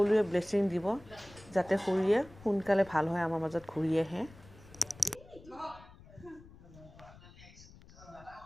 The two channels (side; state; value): left; noise; rumble, 21 dB below the sound